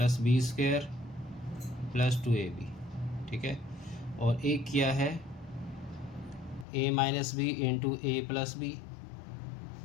B square plus 2ab। ठीक है, और एक किया है A minus B into A plus B,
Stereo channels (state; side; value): drops out; right; at 6.7 s